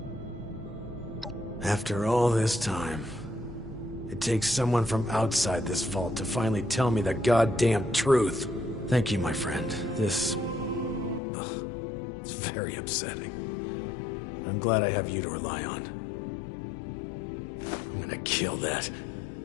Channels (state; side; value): drops out; right; at 11.2 s